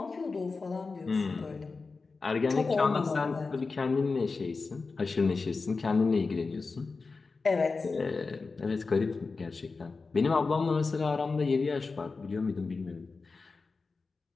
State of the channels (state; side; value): quieter; right; 4.2 dB